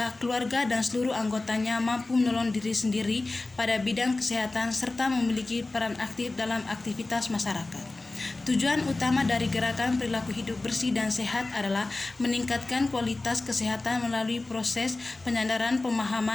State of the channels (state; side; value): quieter; right; 3.2 dB